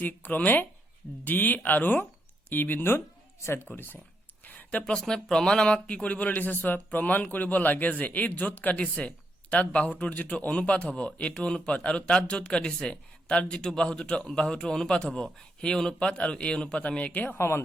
ক্ৰমে ডি আৰু ই বিন্দুত ছেদ কৰিছে। প্ৰশ্নই প্ৰমাণ আমাক কি কৰিবলৈ দিছে চোৱা, প্ৰমাণ কৰিব লাগে যে এই য'ত কাটিছে তাত বাহুটোৰ যিটো অনুপাত হ'ব, এইটো অনুপাত, আৰু তাত য'ত কাটিছে তাত যিটো বাহুটোৰ অনুপাত হ'ব, সেই অনুপাত আৰু এই অনুপাত আমি একে সমান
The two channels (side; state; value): both; normal; correlation 0.79